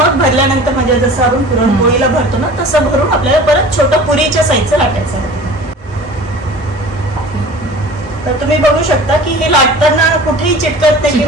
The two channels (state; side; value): normal; both; correlation 0.42